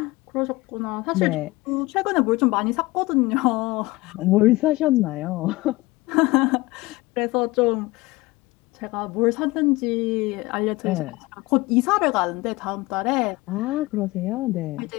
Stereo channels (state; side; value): quieter; right; 20.9 dB